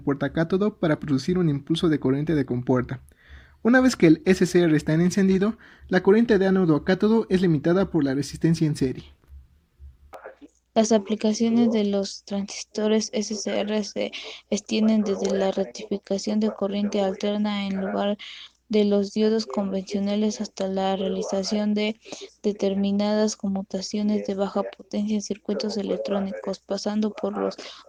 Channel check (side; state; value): both; identical; correlation 1.00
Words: para producir un impulso de corriente de compuerta. Una vez que el SCR está en encendido, la corriente de ánodo a cátodo es limitada por la resistencia en serie. Las aplicaciones de los transistores SCR se extienden desde la rectificación de corriente alterna en lugar de los diodos convencionales hasta la realización de determinadas conmutaciones de baja potencia en circuitos electrónicos, pasando por los